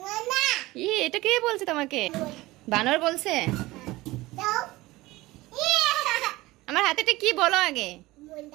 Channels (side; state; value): left; quieter; 19.3 dB